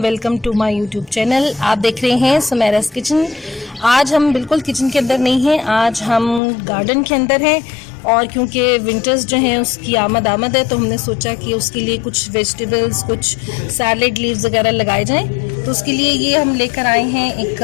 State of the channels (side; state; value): right; drops out; at 6.4 s